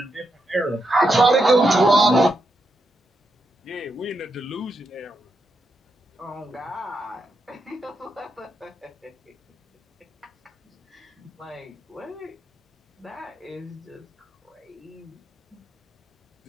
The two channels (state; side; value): normal; both; correlation 0.83